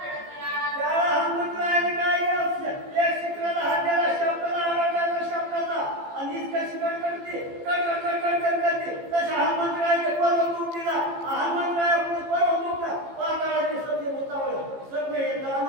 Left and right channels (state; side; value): late; left; 15 ms